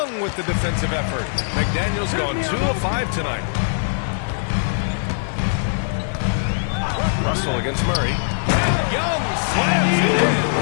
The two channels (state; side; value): silent; right; digital silence